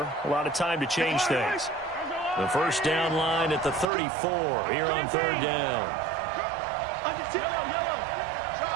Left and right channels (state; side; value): drops out; left; at 3.9 s